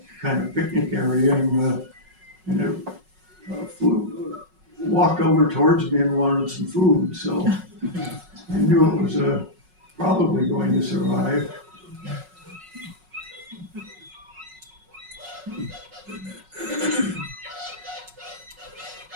kind of picnic area, and it walked over towards me and wanted some food, so I knew it was probably going to survive.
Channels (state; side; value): late; left; 5.4 ms